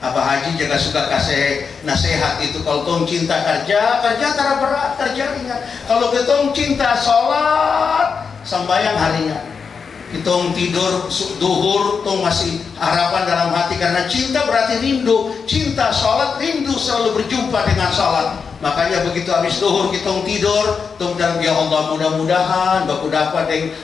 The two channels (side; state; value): right; quieter; 5.7 dB